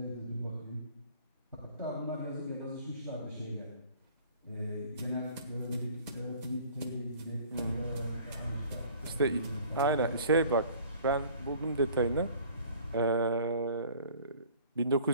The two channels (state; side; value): inverted; both; correlation -0.50